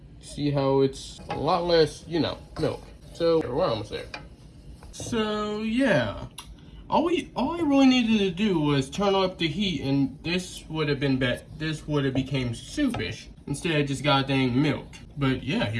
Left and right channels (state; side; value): identical; both; correlation 1.00